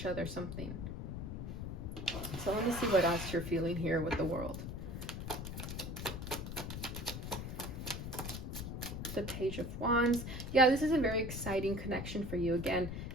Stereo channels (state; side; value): noise; left; rumble, 6 dB below the sound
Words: other something. So let me see what else you're feeling here with the World. The Page of Wands. Yeah, this is a very exciting connection for you. Again,